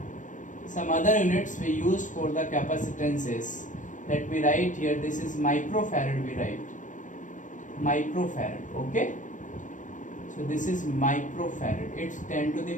capacitance is, let me write here, this is microfarad. We write microfarad. Okay, so this is microfarad. It's 10 to the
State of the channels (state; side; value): late; right; 0.37 ms